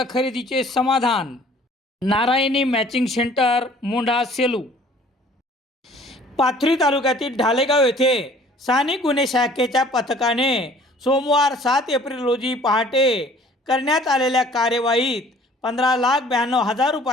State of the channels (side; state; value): both; normal; correlation 0.54